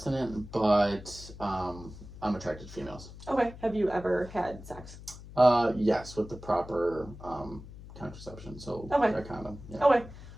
but I'm attracted to females. Okay. Have you ever had sex? Yes, with the proper contraception. So Okay. a condom. Yeah. Okay.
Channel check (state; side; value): noise; left; hum, 15 dB below the sound